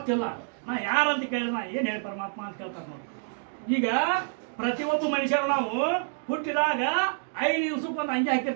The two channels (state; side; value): silent; left; digital silence